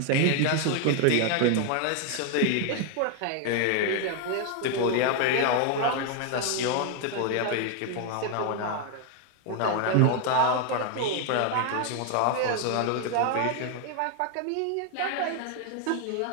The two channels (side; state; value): both; different; correlation 0.01